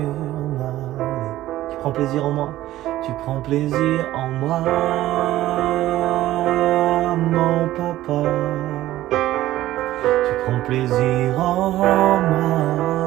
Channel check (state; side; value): quieter; left; 14.9 dB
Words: ma vie. Tu prends plaisir en moi. Tu prends plaisir en moi, mon papa. Tu prends plaisir en moi,